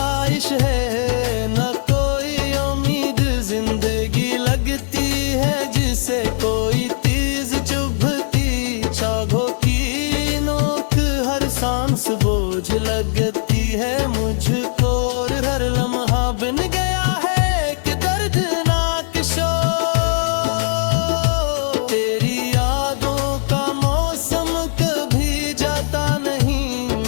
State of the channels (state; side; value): silent; right; 58 dB below the other